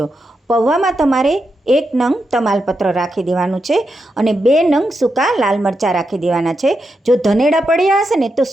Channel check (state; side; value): normal; both; correlation 0.86